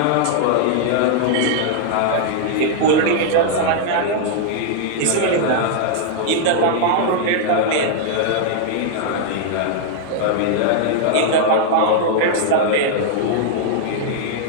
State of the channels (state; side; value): different; both; correlation -0.01